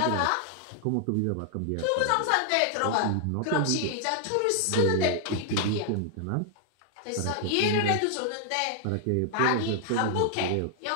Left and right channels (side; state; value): both; different; correlation 0.00